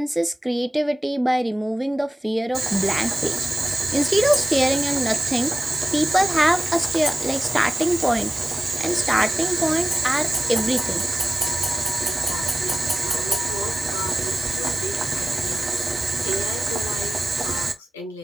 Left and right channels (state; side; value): normal; both; correlation 0.95